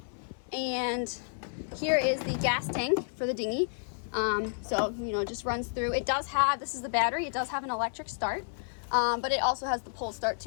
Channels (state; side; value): silent; right; 57 dB below the other